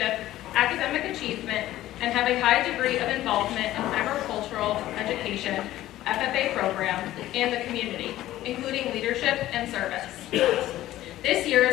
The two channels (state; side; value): quieter; right; 14.6 dB